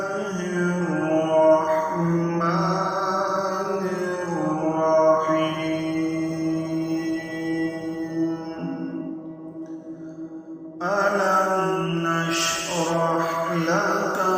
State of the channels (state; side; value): identical; both; correlation 1.00